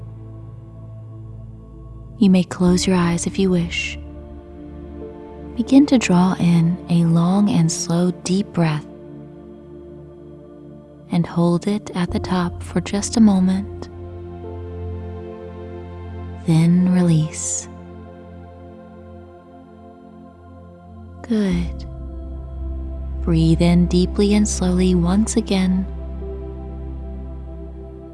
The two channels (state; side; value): identical; both; correlation 1.00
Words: You may close your eyes if you wish. Begin to draw in a long and slow deep breath and hold it at the top for just a moment. Then release. Good. Breathe in deeply and slowly once again.